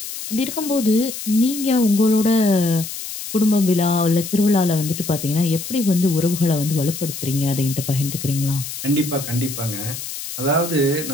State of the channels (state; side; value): noise; left; hiss, 8 dB below the sound